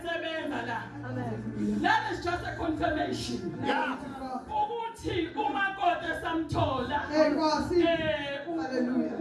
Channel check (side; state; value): both; identical; correlation 1.00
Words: la. That is just a confirmation ukuthi umakoti esamthola